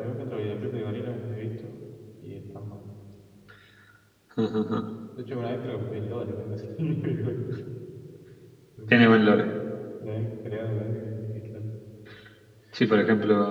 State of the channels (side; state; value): both; identical; correlation 1.00